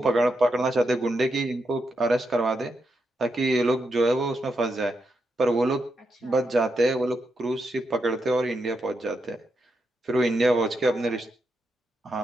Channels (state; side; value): normal; both; correlation 0.84